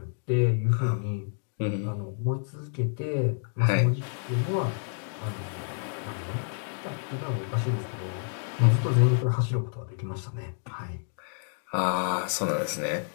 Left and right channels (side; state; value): right; silent; digital silence